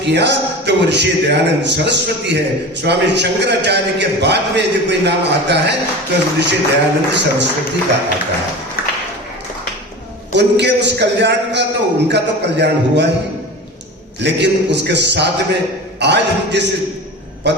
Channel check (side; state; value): both; normal; correlation 0.32